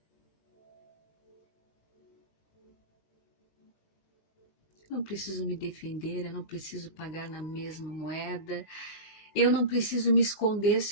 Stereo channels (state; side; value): late; right; 19 ms